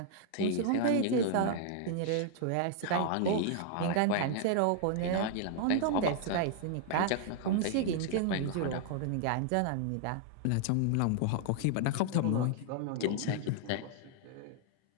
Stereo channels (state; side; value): different; both; correlation -0.01